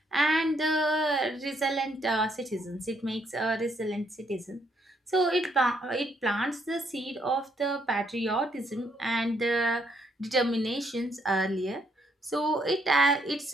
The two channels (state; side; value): normal; both; correlation 0.71